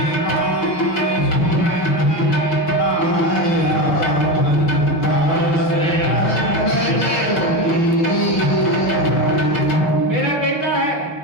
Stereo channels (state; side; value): late; right; 6.0 ms